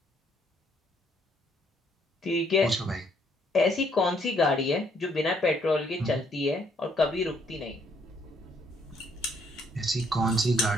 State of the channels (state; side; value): normal; both; correlation 0.68